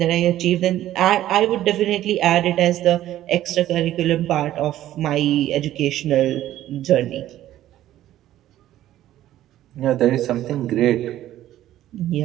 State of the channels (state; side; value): quieter; left; 13.3 dB